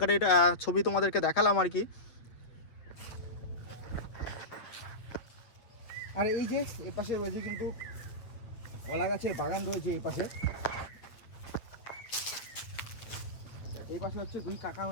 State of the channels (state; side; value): late; right; 7.9 ms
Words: ছবি তোমাদেরকে দেখালাম আর কি। আর এই যে এই পাশে রয়েছে কিন্তু কলা গাছের বাগান রয়েছে। এই পাশে হচ্ছে 2 কাকা